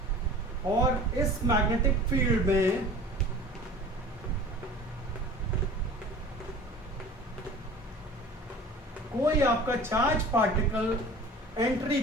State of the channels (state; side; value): normal; both; correlation 0.42